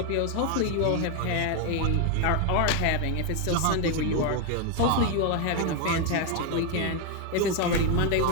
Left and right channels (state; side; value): different; both; correlation 0.01